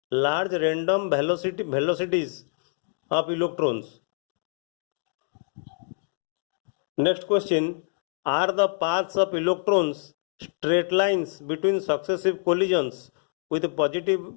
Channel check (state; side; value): silent; right; digital silence